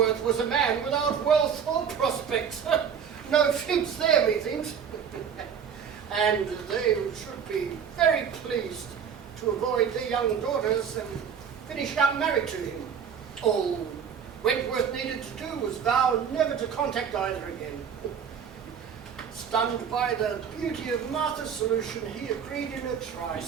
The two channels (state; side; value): quieter; left; 7.4 dB